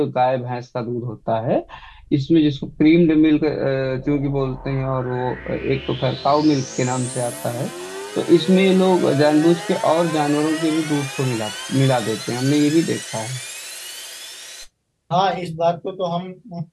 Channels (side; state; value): both; identical; correlation 1.00